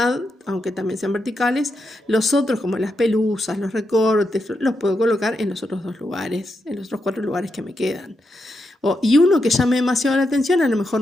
aunque también sean verticales, los otros como las pelusas, los recortes, los puedo colocar en los otros dos lugares, en los otros 4 lugares que me quedan. Y uno que llame demasiado la atención, a lo mejor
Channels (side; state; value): both; normal; correlation 0.84